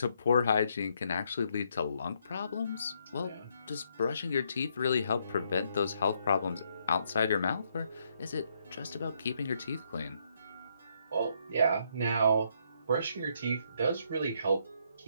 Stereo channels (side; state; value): both; inverted; correlation -0.74